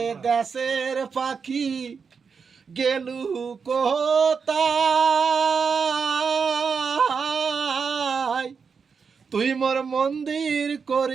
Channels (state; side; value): quieter; left; 5.7 dB